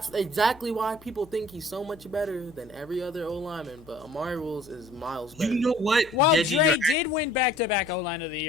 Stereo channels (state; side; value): normal; both; correlation 0.52